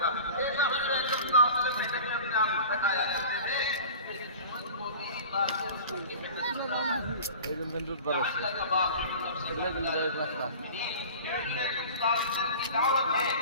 था। ऐसा हुजूर अकरम सल्लल्लाहु अलैहि वसल्लम मेहनत में अपने आप को थकाया करते थे। একজন বেন্টুর পর আছে এগুলো গুলো যায় রাস্তা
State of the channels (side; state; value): both; inverted; correlation -0.39